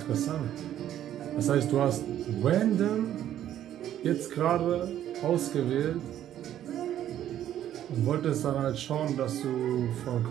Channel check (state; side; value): quieter; left; 11.4 dB